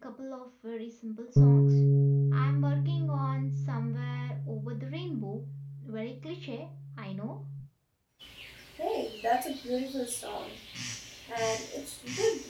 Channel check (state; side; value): identical; both; correlation 1.00